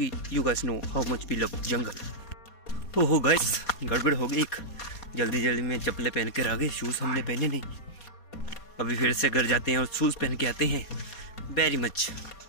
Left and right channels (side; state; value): right; late; 4.2 ms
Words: you guys know how much we love jungle. तो हो गाइस गड़बड़ हो गई, जल्दी जल्दी में चप्पलें पहन कर आ गए, शूज़ हमने पहने नहीं। अभी फिर से घर जाते हैं और शूज़ पहन के आते हैं। वेरी मच